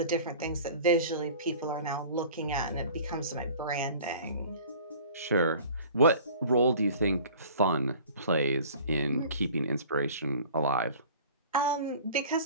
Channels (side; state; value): both; inverted; correlation -0.45